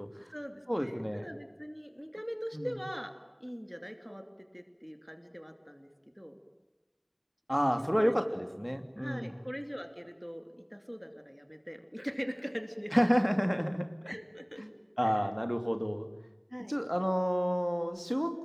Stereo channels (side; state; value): both; identical; correlation 1.00